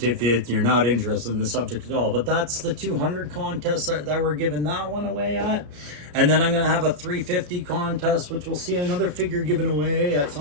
if you're not interested in the subject at all. But that's the 200 contest that we're giving that one away at. And then I'm going to have a 350 contest, which we'll see another figure given away at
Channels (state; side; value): late; left; 33 ms